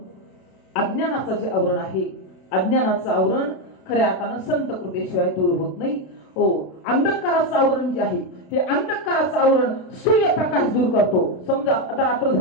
अज्ञानाचं जे आवरण आहे अज्ञानाचं आवरण खऱ्या अर्थानं संत कृपेशिवाय दूर होत नाही. हो अंधकाराचं आवरण जे आहे हे अंधकाराचं आवरण सूर्यप्रकाश दूर करतो. समजा आता रात्र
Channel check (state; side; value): late; right; 32 ms